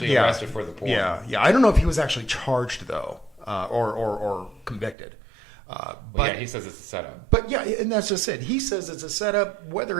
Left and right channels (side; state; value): left; drops out; at 5.0 s